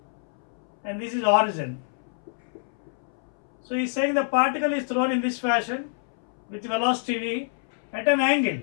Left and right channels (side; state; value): right; silent; 60 dB below the other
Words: and this is origin. So he's saying the particle is thrown in this fashion with velocity v at an